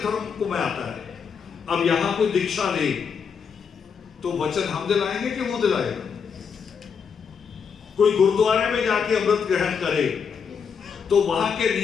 को मैं आता है। अब यहां कोई दीक्षा ले तो वचन हम दिलाएंगे कि वो दिलाएगा? कोई गुरुद्वारे में जाके अमृत ग्रहण करे तो वहां के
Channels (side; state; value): right; quieter; 6.4 dB